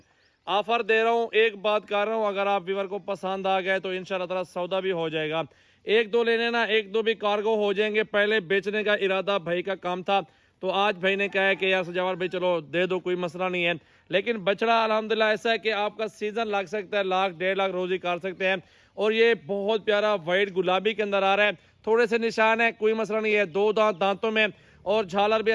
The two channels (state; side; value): identical; both; correlation 1.00